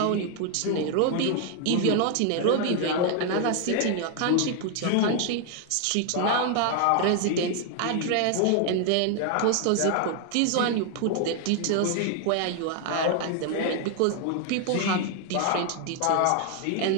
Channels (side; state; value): both; different; correlation 0.00